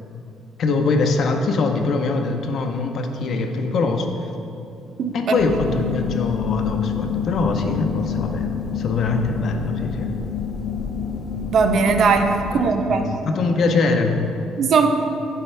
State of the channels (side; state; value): both; normal; correlation 0.62